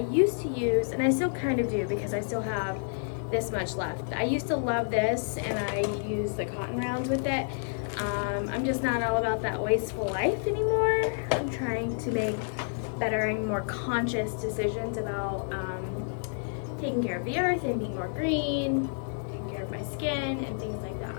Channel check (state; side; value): silent; right; digital silence